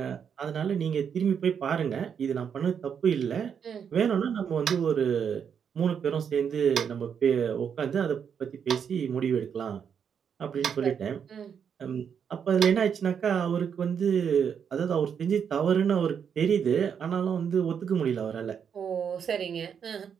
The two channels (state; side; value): quieter; left; 7.4 dB